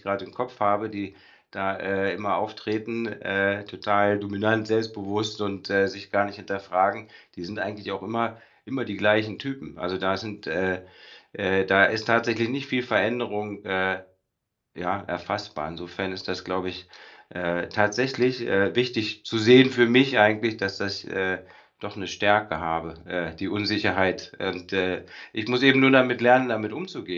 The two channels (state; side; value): identical; both; correlation 1.00